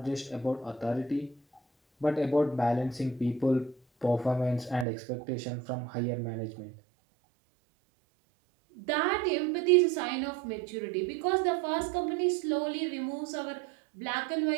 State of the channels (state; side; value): drops out; left; at 4.9 s